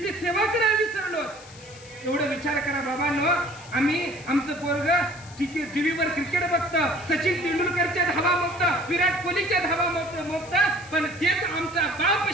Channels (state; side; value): noise; left; hiss, 20 dB below the sound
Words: सेवा करायला विसरलो. एवढं विचार करा बाबांनो, आम्ही आमचं पोरग टीव्हीवर क्रिकेट बघतं, सचिन तेंडुलकरच्या धावा मोगतं, विराट कोहलीच्या धावा मोगतं, पण तेच आमचा बाप